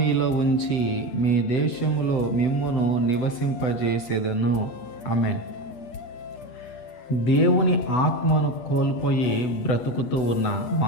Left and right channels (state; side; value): late; right; 8.3 ms